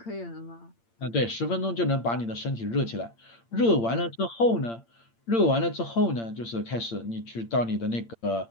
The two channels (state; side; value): late; right; 8.7 ms